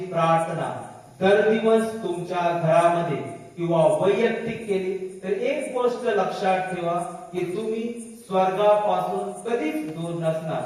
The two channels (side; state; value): both; identical; correlation 1.00